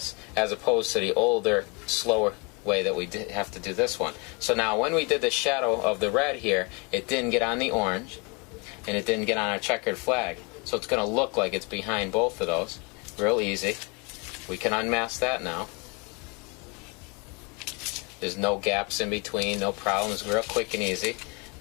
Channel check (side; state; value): right; quieter; 30.8 dB